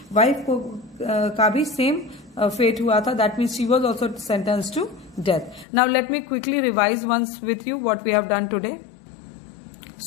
वाइफ को का भी सेम फेट हुआ था. That means she was also sentence to death. Now let me quickly revise once with you what we have done today.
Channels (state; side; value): drops out; right; at 5.7 s